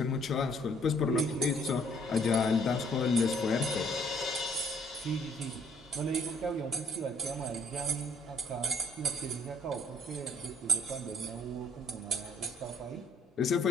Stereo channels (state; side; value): normal; both; correlation 0.64